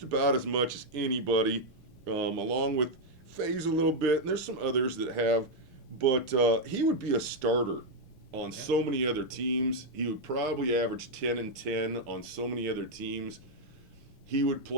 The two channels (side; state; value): both; normal; correlation 0.01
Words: about as much as anybody, along with FaZe a little bit, and there's some others that have, but he would be a starter on so many other teams. He would probably average 10 and 10 on so many other teams. He would